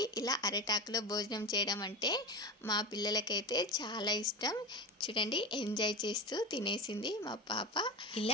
ఇలా అరటాకులో భోజనం చేయడం అంటే మా పిల్లలకైతే చాలా ఇష్టం. చూడండి, ఎంజాయ్ చేస్తూ తినేసింది మా పాప.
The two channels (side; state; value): both; normal; correlation 0.24